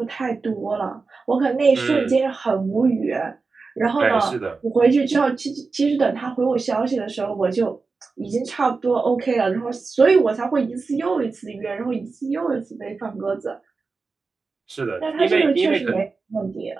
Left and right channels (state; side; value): quieter; left; 4.3 dB